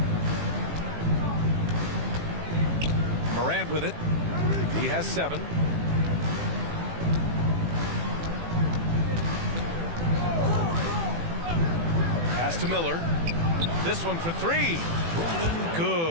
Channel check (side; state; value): left; late; 18 ms